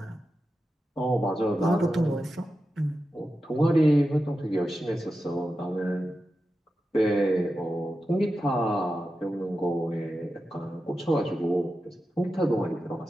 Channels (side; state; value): both; normal; correlation 0.91